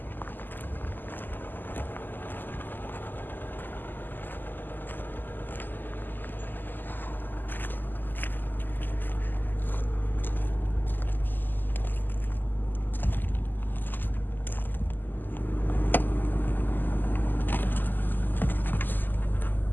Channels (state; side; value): late; right; 0.090 ms